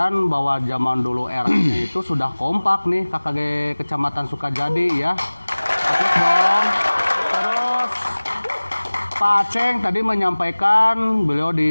bahwa zaman dulu eranya itu sudah kompak nih KKG Kecamatan Sukajadi ya. Terus dong. Terus Pak Aceng tadi menyampaikan beliau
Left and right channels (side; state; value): both; inverted; correlation -1.00